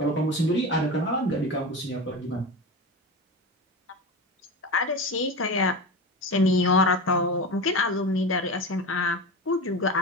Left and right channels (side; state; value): both; normal; correlation 0.25